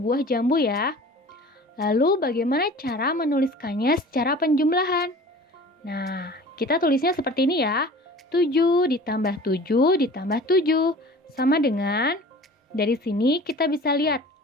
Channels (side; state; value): both; normal; correlation 0.42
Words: jambu ya. Lalu bagaimana cara menuliskannya secara penjumlahan? Nah, kita tulisnya seperti ini ya. 7 ditambah 7 ditambah 7 sama dengan, dari sini kita bisa lihat